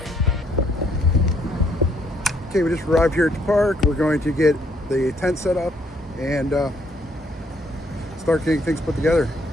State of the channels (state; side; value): normal; both; correlation 0.69